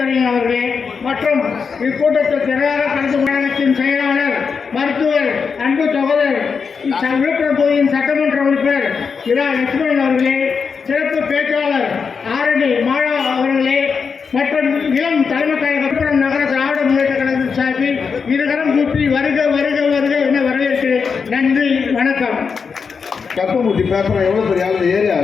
அவர்களே மற்றும் இக்கூட்டத்தில் திரளாக கலந்து கழகத்தின் செயலாளர் மருத்துவர் அன்பு சகோதரர் விழுப்புரம் தொகுதியின் சட்டமன்ற உறுப்பினர் இரா லட்சுமணன் அவர்களே, சிறப்பு பேச்சாளர் ஆரணி மாலா அவர்களே மற்றும் இளம் தலைமை கழகம் நகர திராவிட முன்னேற்ற கழகத்தின் சார்பில் இருகரம் கூப்பி வருக வருக வருக என வரவேற்கிறேன். நன்றி, வணக்கம். கப்பமூட்டி பேசுறேன். எவ்வளவு பெரிய ஆளு, ஏறி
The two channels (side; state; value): right; quieter; 5.7 dB